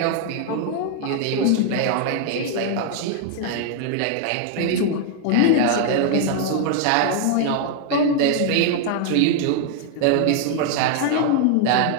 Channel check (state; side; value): different; both; correlation 0.00